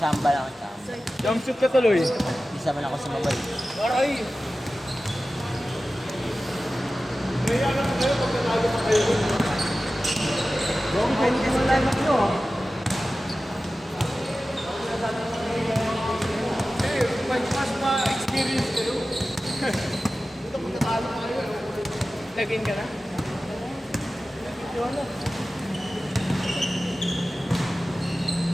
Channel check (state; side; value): normal; both; correlation 0.95